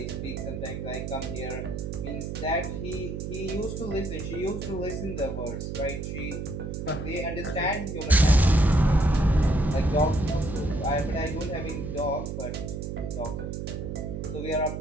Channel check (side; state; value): right; noise; hum, 5 dB below the sound